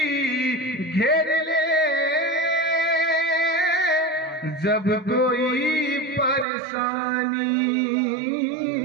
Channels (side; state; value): left; drops out; at 6.5 s